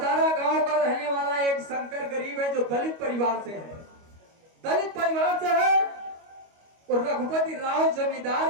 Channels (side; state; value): left; late; 25 ms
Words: गांव का रहने वाला एक शंकर गरीब है जो दलित परिवार से है, दलित परिवार से है। और रघुपति राव जमींदार